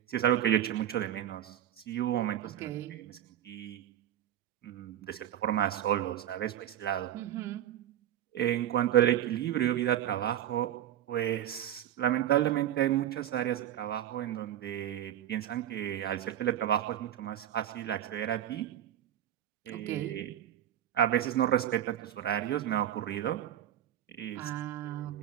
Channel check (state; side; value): quieter; left; 11.6 dB